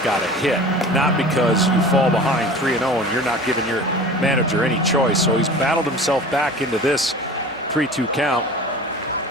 got a hit, not because you fall behind 3-0 and you're not giving your manager any choice. So he's battled himself back into this 3-2 count.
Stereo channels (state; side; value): normal; both; correlation 0.39